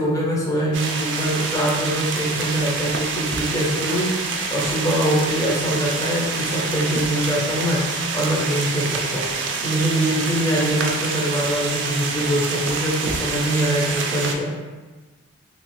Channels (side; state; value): both; normal; correlation 0.42